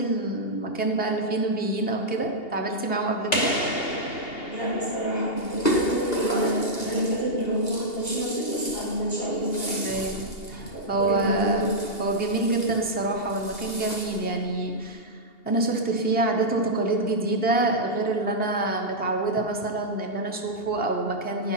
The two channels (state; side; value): late; right; 2.8 ms